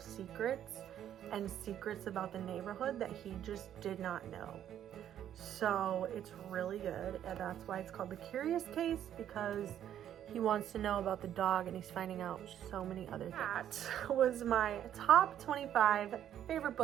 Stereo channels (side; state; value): left; quieter; 10.5 dB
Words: and secrets about the neighborhood that he just did not know. So it's really good, and that's why it's called The Curious Case, because he wants to know about the dog and he's finding out so many other things. That was my top 25 favorite